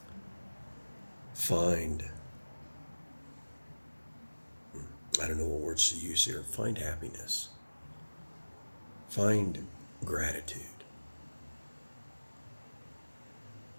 find, I don't know what words to use here, find happiness. Find gratitude.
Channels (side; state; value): both; inverted; correlation -1.00